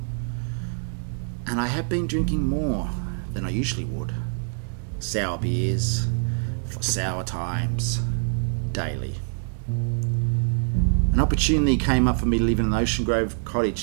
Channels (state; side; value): silent; left; digital silence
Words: And I have been drinking more than I usually would. Sour beers, for sour times, daily. An opportunity came up for me to live in an Ocean Grove